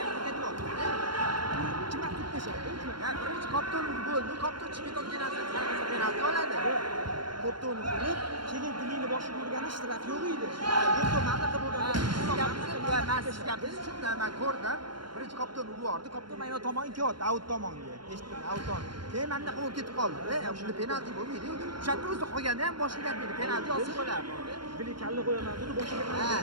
ketib qoldi. Kim vaqt tashadi? Ya birinchi kopton bo'ldi, kopton chiqib ketgan narsa penalti oladi. Kopto'ni urib, keyin dilini boshiga urgani ishtiraki yo'q edi. Kopto mamlakat bo'lgan. Men ko'rdim. Birinchi kopton urib yubordi. Kopton mana tomonga ketdi, out tomonga. Eshitdim, out tomon. Keyin menda qo'l ketib qoldi. Shunda penalti bo'lmaydi. O'shanda o'zi qo'yganda ham boshiga gapirdi. Penalti olsa bo'lardi. Bili kalla qo'yaman dedi, boshiga.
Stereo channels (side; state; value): left; late; 0.72 ms